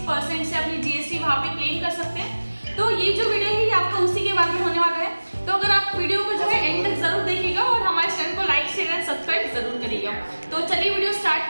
परसेंट से अपनी जीएसटी वहाँ पे क्लेम कर सकते हैं। तो ये जो वीडियो है ये आपका उसी के बारे में होने वाला है। तो अगर आप वीडियो को जो है एंड तक जरूर देखिएगा और हमारे चैनल को लाइक शेयर एंड सब्सक्राइब जरूर करिएगा। तो चलिए वीडियो स्टार्ट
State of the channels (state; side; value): inverted; both; correlation -1.00